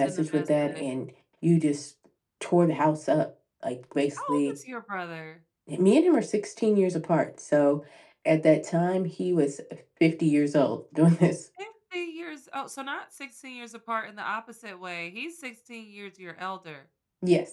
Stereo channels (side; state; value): both; identical; correlation 1.00